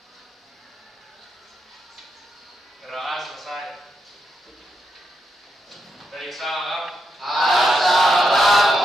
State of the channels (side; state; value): both; normal; correlation 0.84